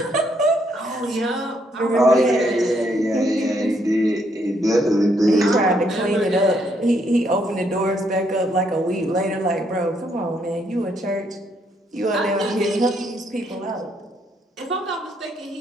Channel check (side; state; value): both; normal; correlation 0.73